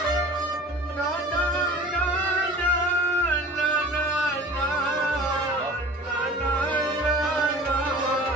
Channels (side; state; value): both; normal; correlation 0.43